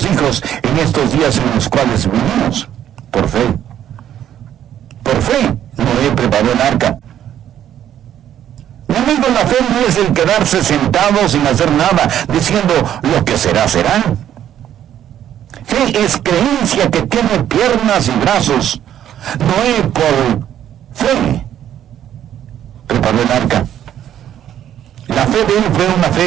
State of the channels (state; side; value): quieter; left; 10.8 dB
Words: hijos en estos días en los cuales vivimos? Por fe. Por fe, Noé preparó el arca. Mi amigo, la fe no es el quedarse sentado sin hacer nada, diciendo lo que será, será. Fe es creencia que tiene piernas y brazos. Noé, por fe, preparó el arca. La fe de él fue una